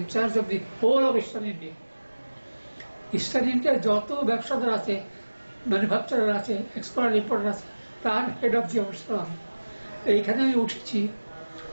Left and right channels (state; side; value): inverted; both; correlation -1.00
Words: charge of the whole of eastern India. Eastern ইন্ডিয়ার যত ব্যবসাদার আছে, ম্যানুফ্যাকচারার আছে, এক্সপোর্টার ইম্পোর্টার আছে, তার হেড অফ দি অফিসার আমি। এইখানে আমি উঠেছি।